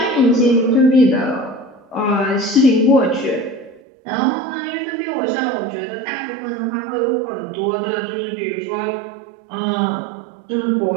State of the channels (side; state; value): left; drops out; at 3.8 s